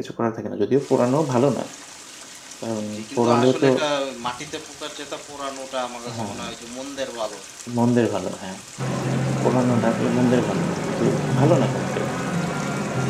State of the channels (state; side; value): identical; both; correlation 1.00